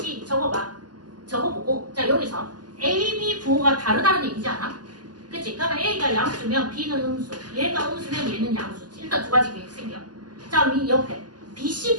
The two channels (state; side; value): late; left; 0.70 ms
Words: 적어봐. 적어보고 자, 여기서 A, B 부호가 다르다는 얘기지 않아? 그치? 그러면 A가 양수면 B는 음수, 얘가 음수면 얘는 양수지. 일단 두 가지 계획 생겨. 자, 이 옆에 BC